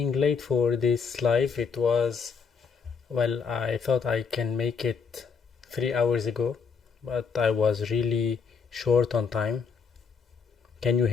late for this live. It was, well, I thought I can make it 3 hours ago, but I was really short on time. Can you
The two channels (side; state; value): right; quieter; 5.7 dB